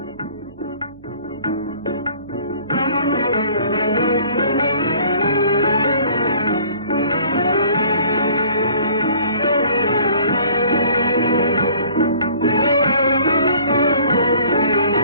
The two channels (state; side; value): inverted; both; correlation -0.53